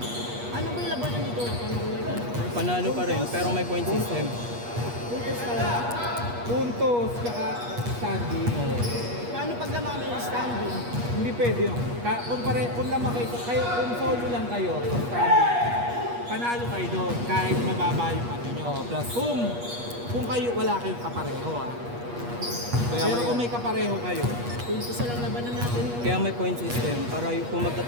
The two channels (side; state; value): left; late; 8.4 ms